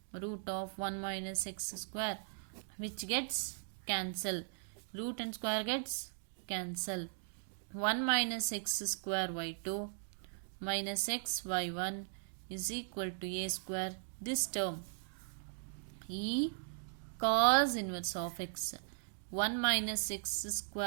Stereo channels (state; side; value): silent; left; digital silence